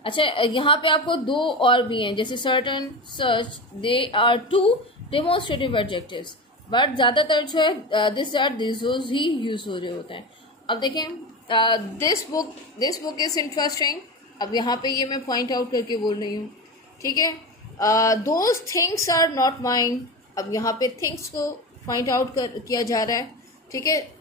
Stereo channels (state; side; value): normal; both; correlation 0.24